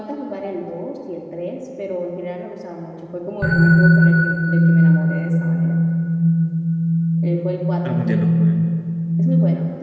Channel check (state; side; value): identical; both; correlation 1.00